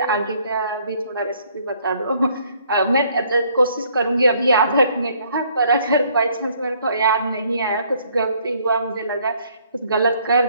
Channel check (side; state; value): both; inverted; correlation -0.64